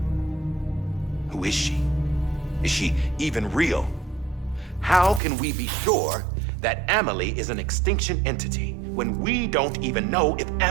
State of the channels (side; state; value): left; drops out; at 5.2 s